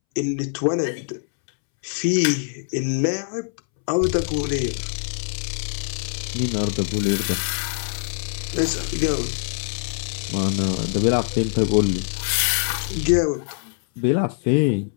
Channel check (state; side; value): silent; right; 63 dB below the other